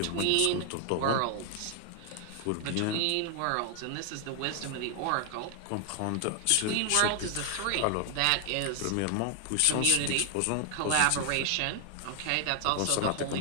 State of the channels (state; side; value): different; both; correlation 0.00